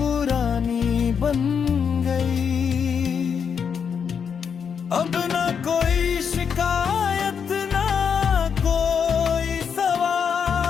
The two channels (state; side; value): quieter; right; 6.9 dB